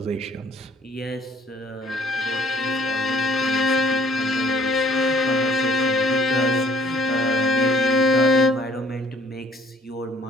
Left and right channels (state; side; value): normal; both; correlation 0.59